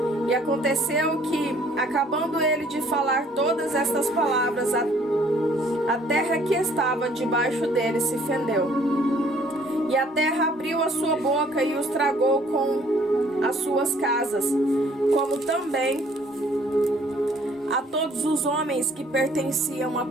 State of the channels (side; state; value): both; normal; correlation 0.59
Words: E aconteceu que, acabando ele de falar todas estas palavras, a terra que estava debaixo dele se fendeu. E a terra abriu a sua boca e os tragou com as suas casas, como também a todos os homens que pertenciam a